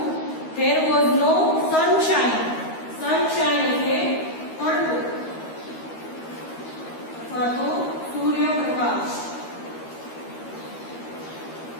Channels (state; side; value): late; right; 13 ms